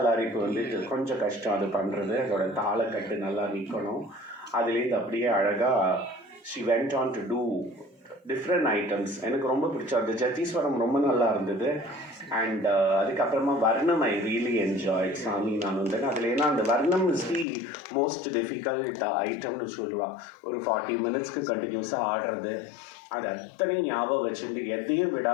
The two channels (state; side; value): drops out; right; at 17.4 s